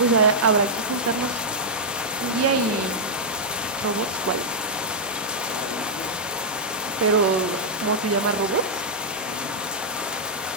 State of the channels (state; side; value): normal; both; correlation -0.07